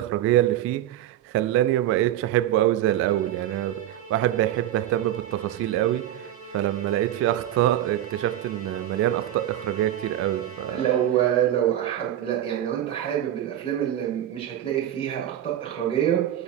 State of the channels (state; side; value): quieter; left; 12.2 dB